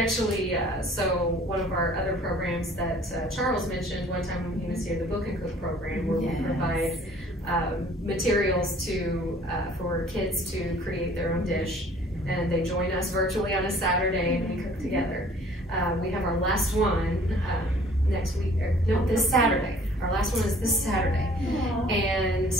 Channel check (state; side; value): normal; both; correlation 0.54